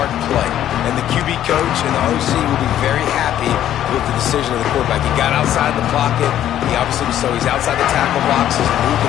play. And the QB coach and the OC will be very happy with the decision of the quarterback. He got outside the pocket. He obviously was so he's outside the tackle boxes, moved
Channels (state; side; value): quieter; right; 11.5 dB